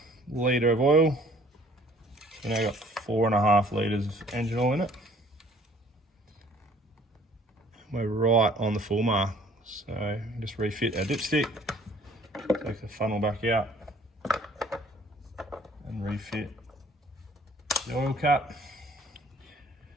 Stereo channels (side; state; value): both; normal; correlation 0.56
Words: litre of oil. So now I've got 4.5 litres of engine oil in it. We're right on the full mark. So just refit our dipstick, take the funnel back out and refit the oil cap.